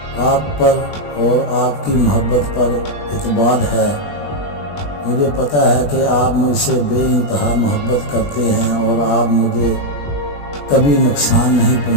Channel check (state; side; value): late; right; 21 ms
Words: آپ پر اور آپ کی محبت پر اعتماد ہے۔ مجھے پتہ ہے کہ آپ مجھ سے بے انتہا محبت کرتے ہیں اور آپ مجھے کبھی نقصان نہیں